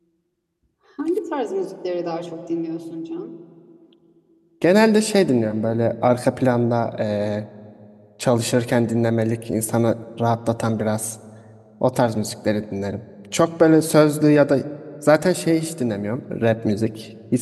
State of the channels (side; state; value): both; identical; correlation 1.00